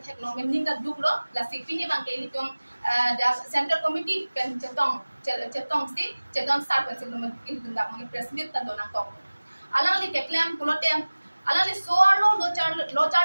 theklong men ninga duklo la sipi ni bang ke ili tum the central committee kan chetong sar kan silum ili tum dak mang president tan dona kok alang ni ke claim pulo te alang ni soarlo lo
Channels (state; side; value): inverted; both; correlation -1.00